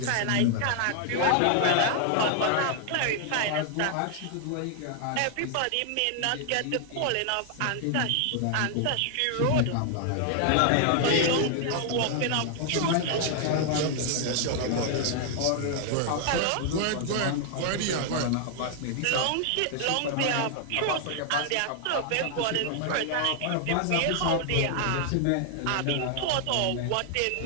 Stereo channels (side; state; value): both; different; correlation 0.00